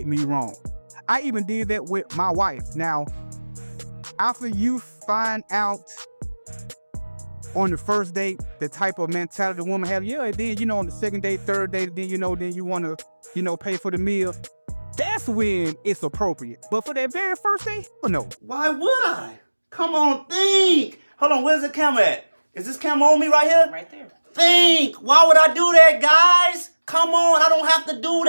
me wrong. I even did that with my wife. Now, after you find out on the first date the type of mentality the woman has, and then, on the second date, third date, then, then you want to, pay for the meal. That's when it's appropriate. But for that very first date, no. Why would I? Come on, think. Hold on, where's the camera at? Is this camera on me right here? Right there. Think. Why would I do that, guys? Come on, I don't have to do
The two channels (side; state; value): both; inverted; correlation -1.00